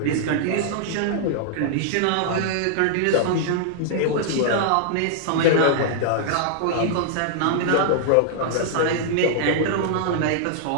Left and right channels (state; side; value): different; both; correlation -0.01